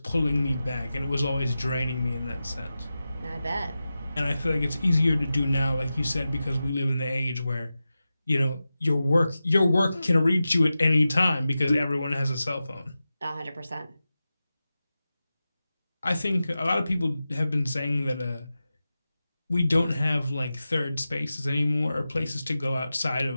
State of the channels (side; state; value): both; inverted; correlation -0.93